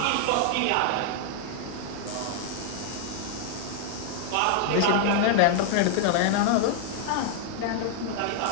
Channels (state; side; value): different; both; correlation 0.00